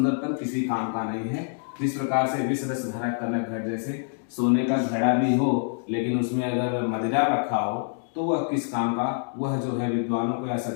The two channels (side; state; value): right; silent; digital silence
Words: किसी काम का नहीं है। जिस प्रकार से विष रस धरा कनक घट जैसे, सोने का घड़ा भी हो लेकिन उसमें अगर मदिरा रखा हो तो वह किस काम का, वह जो है विद्वानों को या